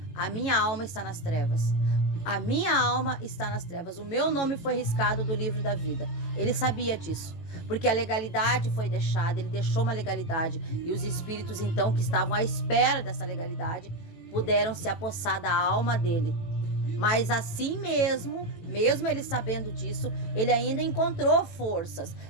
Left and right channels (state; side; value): late; right; 18 ms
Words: a minha alma está nas trevas. A minha alma está nas trevas. O meu nome foi riscado do livro da vida. Ele sabia disso. Porque a legalidade foi deixada, ele deixou uma legalidade. E os espíritos então que estavam à espera dessa legalidade puderam se apossar da alma dele. Mas assim mesmo ele sabendo disso, ele ainda encontrou forças.